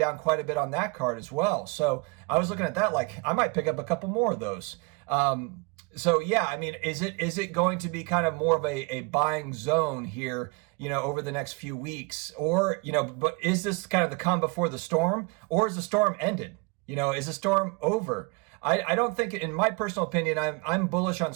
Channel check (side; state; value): left; quieter; 29.4 dB